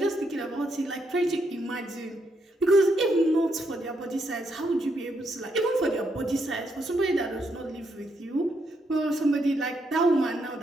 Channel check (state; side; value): normal; both; correlation 0.78